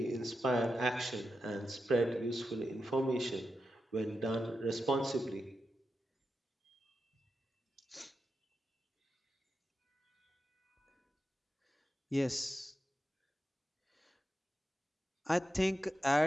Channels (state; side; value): normal; both; correlation 0.89